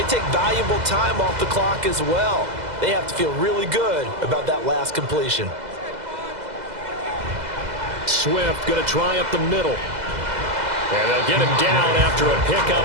take valuable time off the clock as well. They have to feel really good about that last completion. Swift going to try up the middle. And they'll get him down after a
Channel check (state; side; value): late; left; 2.0 ms